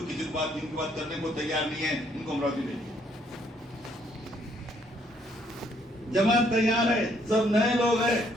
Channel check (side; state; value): both; normal; correlation 0.68